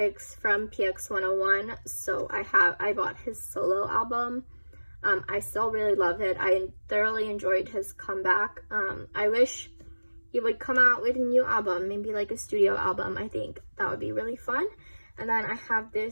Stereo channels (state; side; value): inverted; both; correlation -1.00